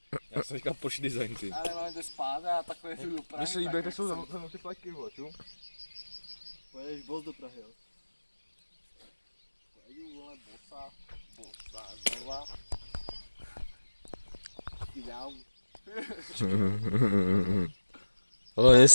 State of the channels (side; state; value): both; inverted; correlation -1.00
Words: Já jsem říkal pošli design, ty. Ale máme to spát a takové tu dopravy. Mně se líbí, jak jsou za ty pleky, vole, ču? Pojedeš boss do Prahy, jo? Pojedu, vole, bosa, znova. Ideál. Hlavně